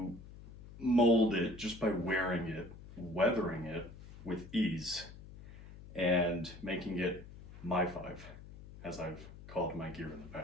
mold it just by wearing it, weathering it with ease, and making it my five, as I've called my gear in the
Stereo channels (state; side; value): noise; left; hum, 16 dB below the sound